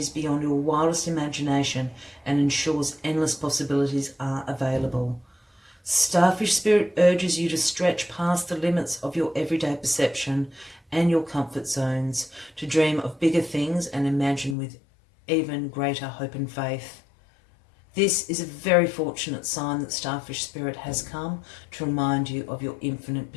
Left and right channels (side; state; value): right; drops out; at 14.6 s